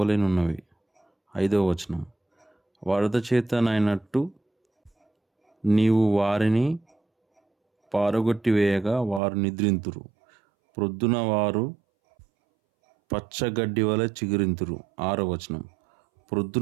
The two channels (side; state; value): left; drops out; at 9.2 s